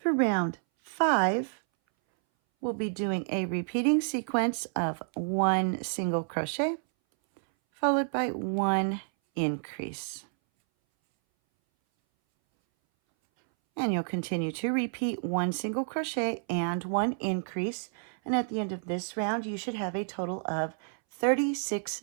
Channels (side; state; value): left; silent; 58 dB below the other